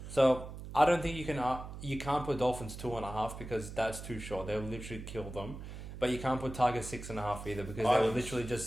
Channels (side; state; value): right; noise; hum, 10 dB below the sound